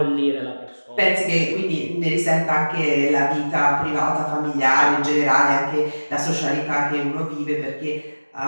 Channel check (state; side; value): inverted; both; correlation -1.00